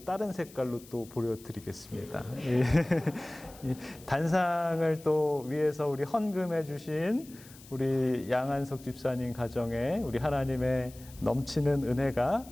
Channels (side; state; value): left; noise; hiss, 21 dB below the sound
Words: 다른 색깔로 또 보여드리겠습니다. 단상을 또 위해서 우리 헌금해 주신 우리 양한석 집사님 가정에 우리 하나님의 넘치는 은혜가